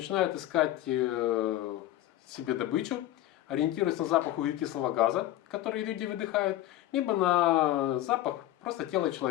искать себе добычу, ориентируются на запах углекислого газа, который люди выдыхают, либо на запах просто тела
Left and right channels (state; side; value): quieter; right; 14.4 dB